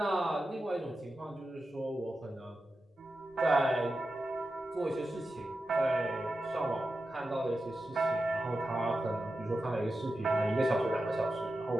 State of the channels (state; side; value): normal; both; correlation 0.91